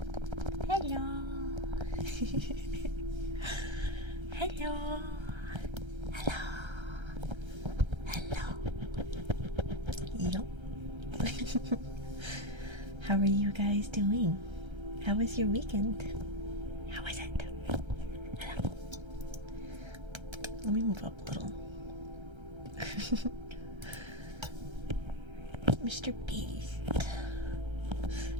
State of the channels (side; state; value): left; late; 1.3 ms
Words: Hello. Hello. Hello. Hello. Yup. How are you guys doing? How was your weekend? How was it? Hello. Let me move up a little. Mr. Beast.